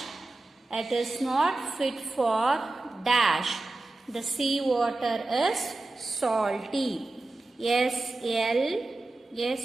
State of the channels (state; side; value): quieter; left; 3.0 dB